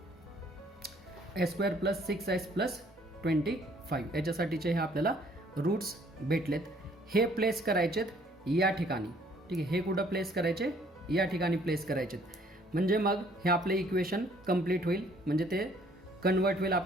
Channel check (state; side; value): normal; both; correlation 0.61